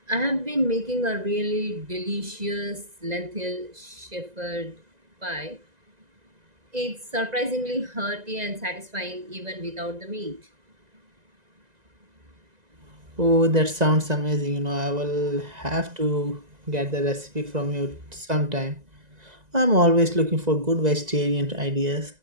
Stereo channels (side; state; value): left; late; 2.0 ms